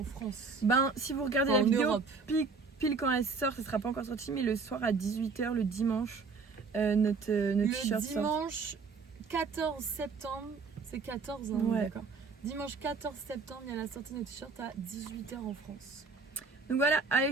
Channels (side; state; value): left; quieter; 4.6 dB